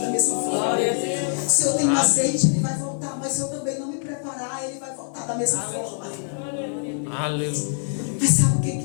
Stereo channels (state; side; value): silent; right; 63 dB below the other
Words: mesma forma. Se eu tenho azeite, Ele vai voltar. Mas se eu também não me preparar, Ele vai voltar da mesma forma. Aleluia. Mas sabe o